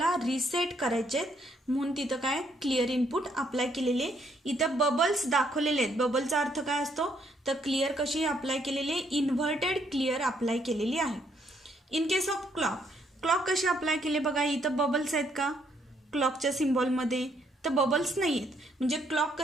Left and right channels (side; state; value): both; normal; correlation 0.71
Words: रिसेट करायचे आहेत, म्हणून तिथं काय क्लिअर इनपुट अप्लाय केलेले. इथं बबल्स दाखवलेले आहेत. बबलचा अर्थ काय असतो? तर क्लिअर कशी अप्लाय केलेली? इन्व्हर्टेड क्लिअर अप्लाय केलेली आहे. इन केस ऑफ क्लॉक कशी अप्लाय केले बघा. इथं बबल्स आहेत का क्लॉकच्या सिम्बॉलमध्ये? तर बबल्स नाही आहेत. म्हणजे क्लॉक